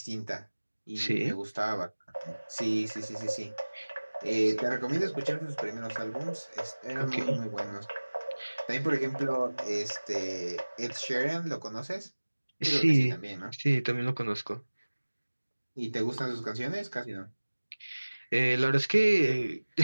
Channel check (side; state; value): both; inverted; correlation -1.00